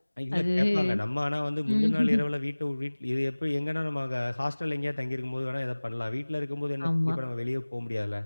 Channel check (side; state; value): both; inverted; correlation -1.00